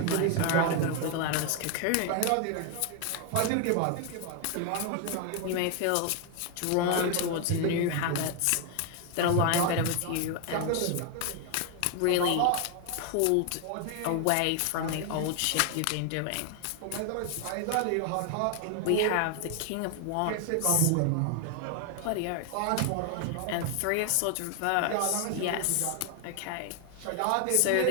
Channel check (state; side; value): different; both; correlation 0.00